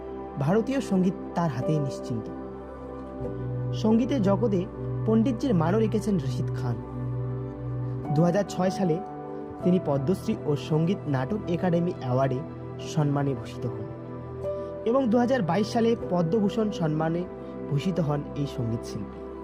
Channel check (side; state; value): both; identical; correlation 1.00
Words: ভারতীয় সঙ্গীত তার হাতেই নিশ্চিন্ত। সঙ্গীতের জগতে পণ্ডিতজির মানও রেখেছেন রশিদ খান। 2006 সালে তিনি পদ্মশ্রী ও সঙ্গীত নাটক একাডেমি অ্যাওয়ার্ডে সম্মানে ভূষিত হন এবং 2022 সালে পদ্মভূষণ সম্মানে ভূষিত হন এই সঙ্গীত শিল্পী।